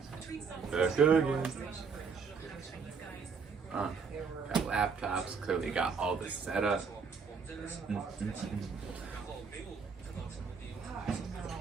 Back again. Got laptops, clearly got all this set up.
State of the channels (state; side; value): quieter; left; 5.5 dB